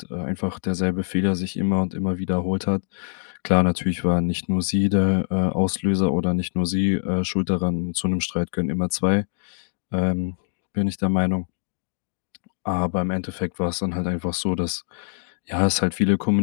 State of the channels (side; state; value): right; silent; digital silence